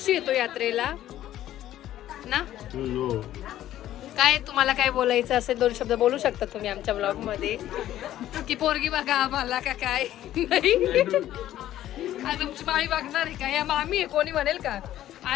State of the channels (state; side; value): quieter; right; 12.9 dB